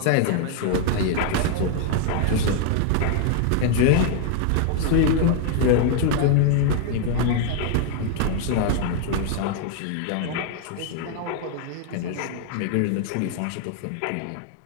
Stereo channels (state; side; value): different; both; correlation 0.00